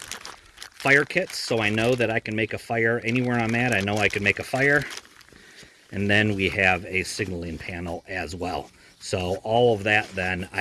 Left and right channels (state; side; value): identical; both; correlation 1.00